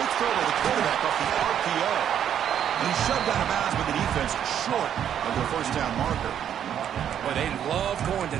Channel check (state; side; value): quieter; left; 9.5 dB